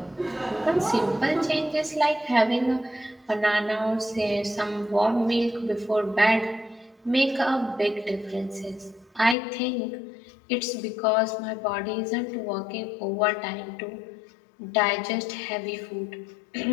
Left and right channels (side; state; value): right; drops out; at 9.3 s